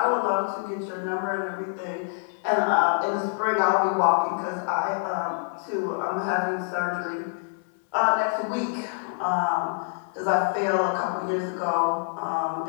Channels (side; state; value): right; silent; 61 dB below the other